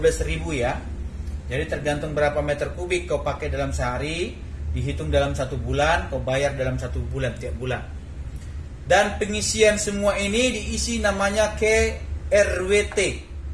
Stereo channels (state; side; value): identical; both; correlation 1.00